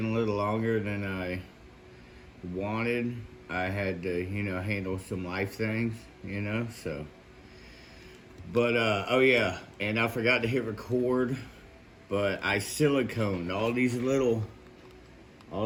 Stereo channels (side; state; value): both; identical; correlation 1.00